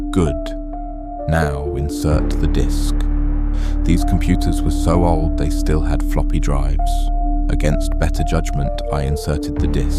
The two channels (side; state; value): both; identical; correlation 1.00